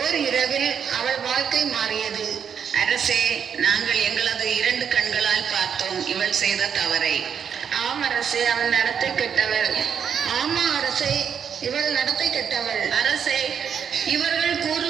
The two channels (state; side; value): quieter; left; 7.5 dB